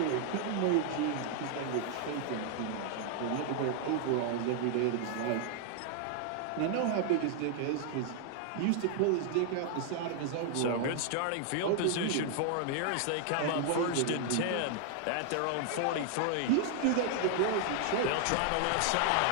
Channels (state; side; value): different; both; correlation 0.00